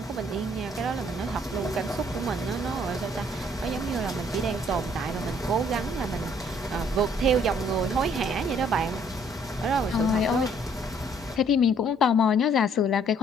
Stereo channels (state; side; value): normal; both; correlation 0.63